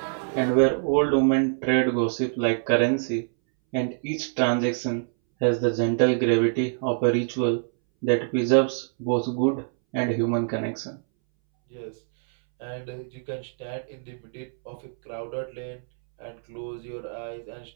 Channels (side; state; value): left; silent; 61 dB below the other